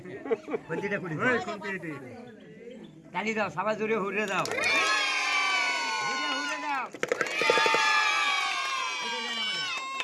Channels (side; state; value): both; identical; correlation 1.00